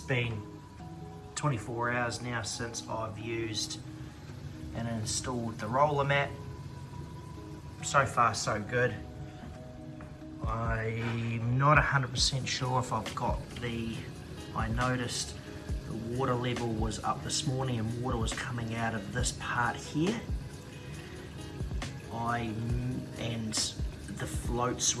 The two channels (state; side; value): identical; both; correlation 1.00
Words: been 24 hours now since I've used and installed the roller mat. So far so good. I'm not 100% sure if I've got I noticed the water level was up this morning and water was coming out of this part here. And the float